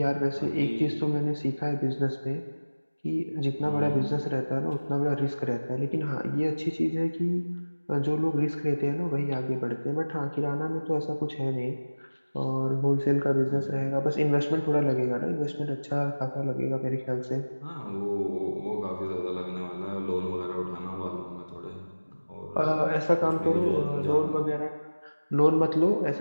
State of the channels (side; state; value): both; inverted; correlation -1.00